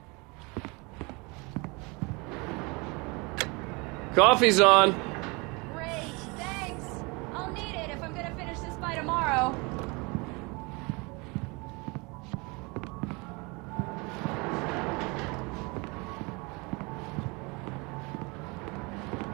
Coffee's on. Great, thanks. I'll need it if I'm gonna finish this by tomorrow.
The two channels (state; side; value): quieter; left; 27.8 dB